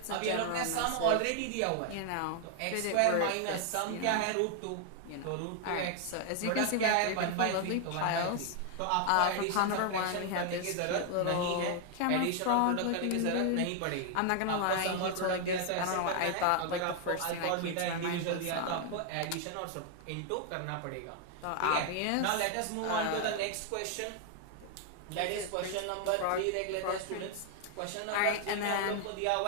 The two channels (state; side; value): different; both; correlation 0.00